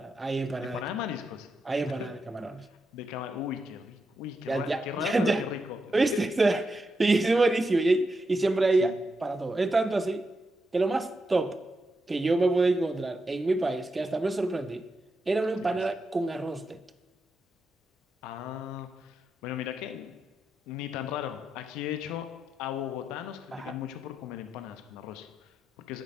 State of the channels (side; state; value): both; normal; correlation 0.86